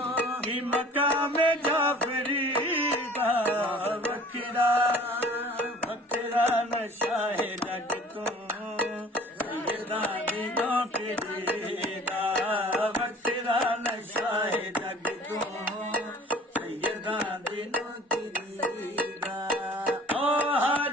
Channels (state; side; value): normal; both; correlation 0.48